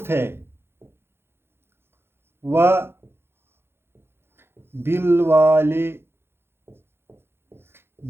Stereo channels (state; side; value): late; left; 0.11 ms